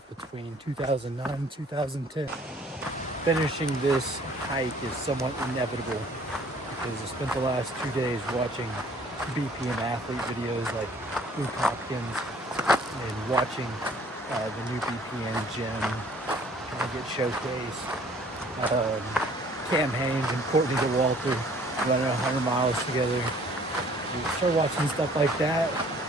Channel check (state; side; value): normal; both; correlation 0.56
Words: between 2009 and 2010. Finishing this hike is somewhat inevitable because I spent the last 2 days watching BPM athlete videos like Luke Hopkins and watching the new BPM gym kind of get showcased. Cam Haynes and Courtney DeWalter running 100 miles together. You start watching stuff like that,